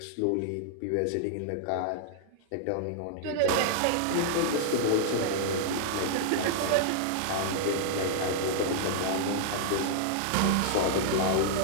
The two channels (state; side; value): different; both; correlation -0.01